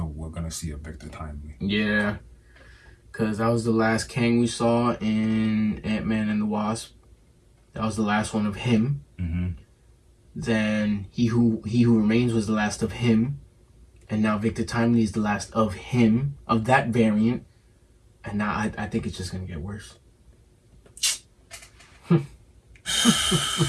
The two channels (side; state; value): both; identical; correlation 1.00